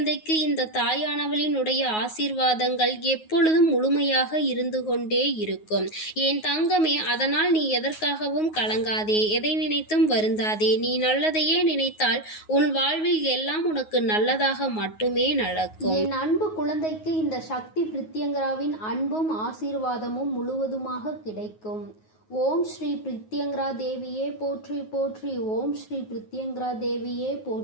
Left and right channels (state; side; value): late; right; 9.4 ms